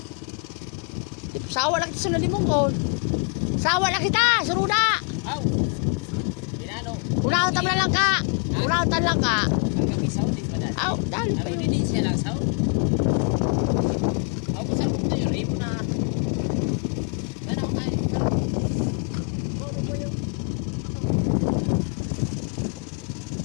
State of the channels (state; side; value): quieter; right; 37.5 dB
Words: Sawa lang kita sa nalimong ko. Sawa lang kita, suruda. Aw! Dinano. Unahutan mo na lang ka. Unahutan lang ka. Hanggang isaw, di ba dahil? Aw, dali pa Ano yun. hindi siya lang saw? Aw, kung saan mo na yun, rin mo na. Ano ako kain?